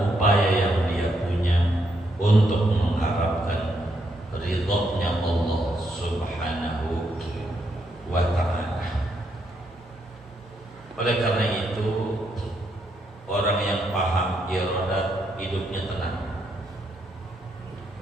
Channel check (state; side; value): normal; both; correlation 0.77